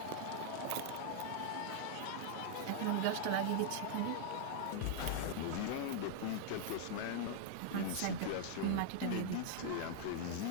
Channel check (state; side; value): different; both; correlation 0.00